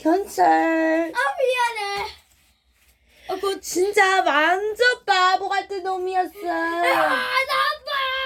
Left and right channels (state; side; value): identical; both; correlation 1.00